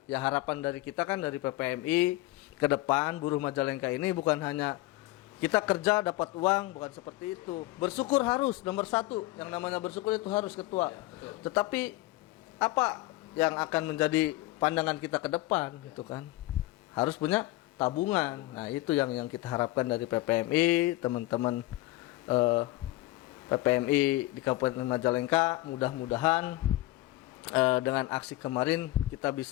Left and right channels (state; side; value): quieter; right; 18.3 dB